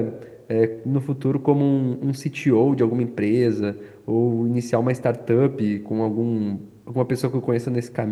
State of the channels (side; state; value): both; identical; correlation 1.00